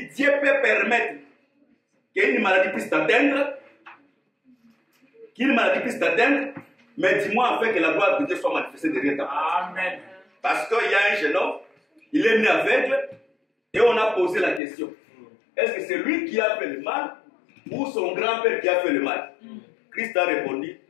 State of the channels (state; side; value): drops out; right; at 14.6 s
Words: que Dieu peut permettre qu'une maladie puisse t'atteindre. Mais dis-moi afin que la gloire de Dieu soit manifestée derrière ta part. Amen. Parce qu'il y a un jeune homme, il est né aveugle, et on a posé la question. Est-ce que c'est lui qui a fait le mal ou son grand-père qui a fait le mal? Christ a répondu,